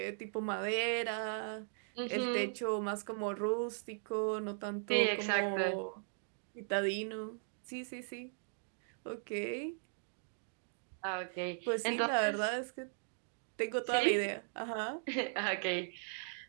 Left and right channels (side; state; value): left; silent; digital silence